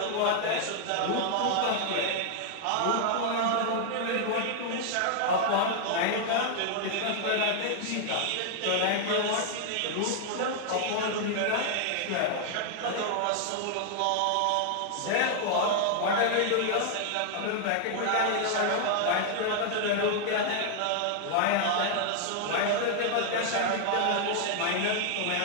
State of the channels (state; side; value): different; both; correlation 0.00